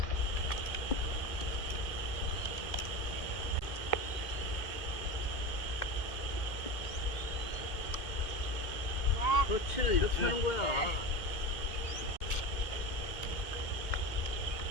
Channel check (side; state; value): right; late; 2.1 ms